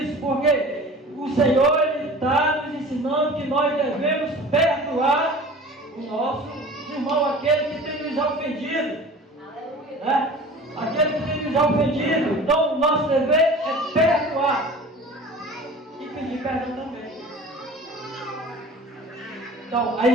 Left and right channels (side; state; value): both; normal; correlation 0.41